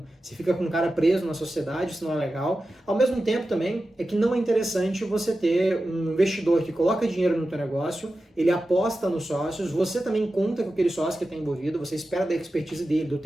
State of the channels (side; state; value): both; normal; correlation 0.93